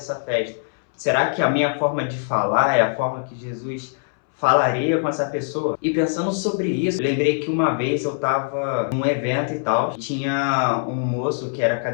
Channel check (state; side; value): silent; right; 64 dB below the other